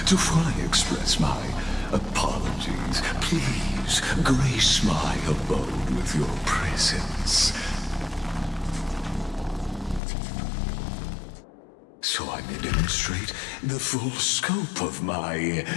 To fully express my apologies, please grace my abode with your presence. So I may demonstrate the full scope of my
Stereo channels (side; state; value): right; drops out; at 10.0 s